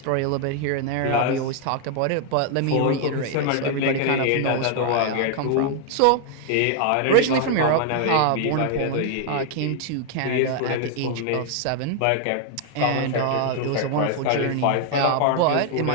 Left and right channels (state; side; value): different; both; correlation 0.00